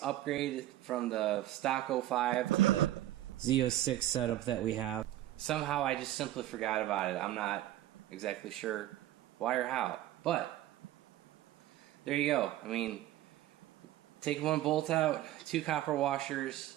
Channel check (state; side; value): quieter; left; 14.2 dB